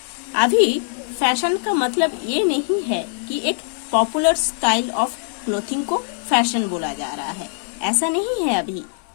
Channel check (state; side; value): silent; right; digital silence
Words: अभी फैशन का मतलब ये नहीं है कि एक पॉपुलर स्टाइल ऑफ क्लोथिंग को फैशन बोला जा रहा है, ऐसा नहीं है अभी।